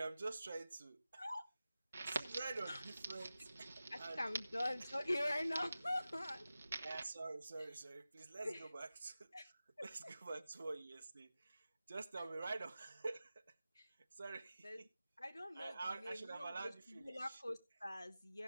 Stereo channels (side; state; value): both; inverted; correlation -0.95